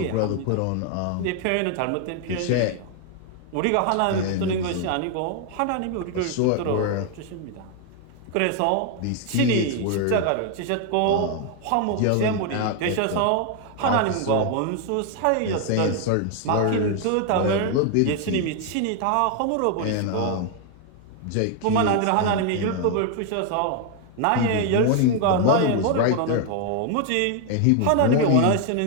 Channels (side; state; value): both; different; correlation 0.00